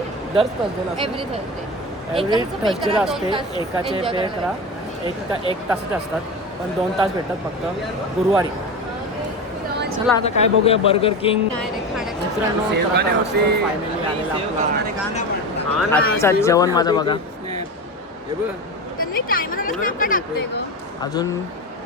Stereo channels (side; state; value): both; normal; correlation 0.24